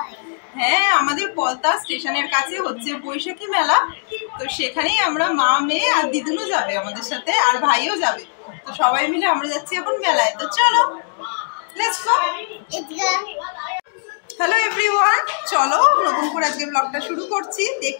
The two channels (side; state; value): right; silent; digital silence